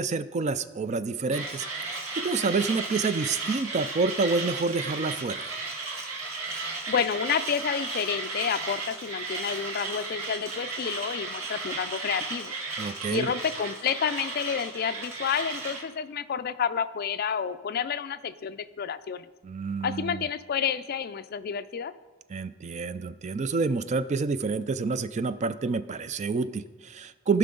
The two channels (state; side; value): normal; both; correlation 0.11